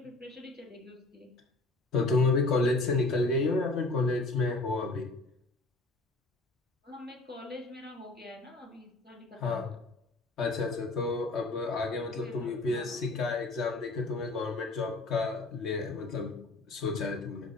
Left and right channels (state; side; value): quieter; right; 3.1 dB